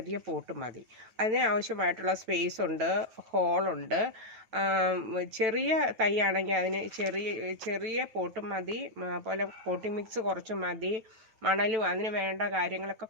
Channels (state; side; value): late; left; 9.1 ms